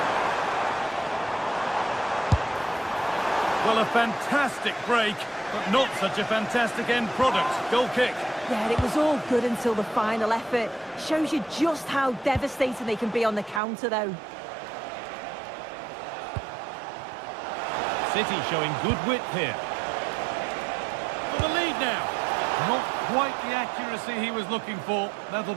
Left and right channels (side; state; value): left; drops out; at 13.6 s